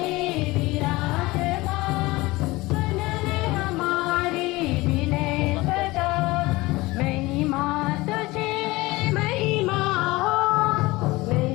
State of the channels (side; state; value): right; quieter; 21.0 dB